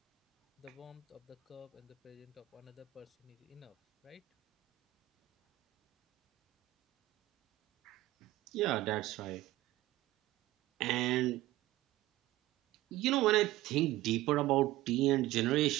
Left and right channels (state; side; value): quieter; left; 16.7 dB